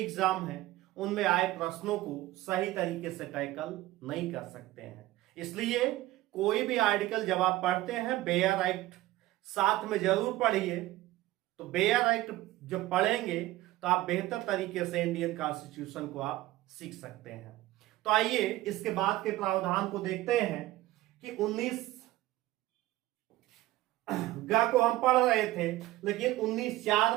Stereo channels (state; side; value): quieter; left; 17.0 dB